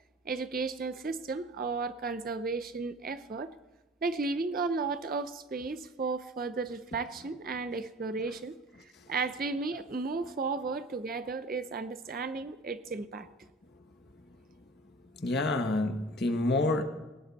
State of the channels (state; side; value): normal; both; correlation 0.42